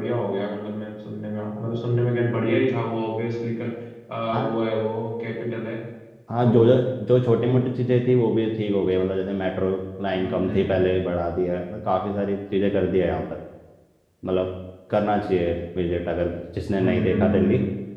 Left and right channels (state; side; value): identical; both; correlation 1.00